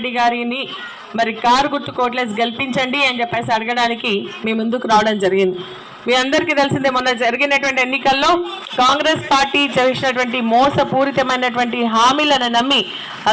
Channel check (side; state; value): both; identical; correlation 1.00